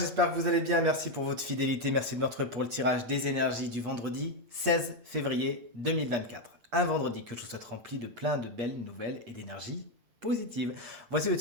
que vous allez bien. Merci pour votre fidélité, merci de me retrouver pour le tirage des énergies du vendredi 16 février 2024. Un vendredi que je vous souhaite rempli de plein de belles nouvelles et d'énergie positive. Voici le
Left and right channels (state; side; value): late; left; 8.4 ms